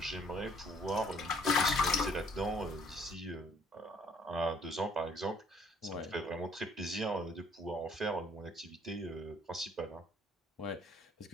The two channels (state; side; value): normal; both; correlation 0.61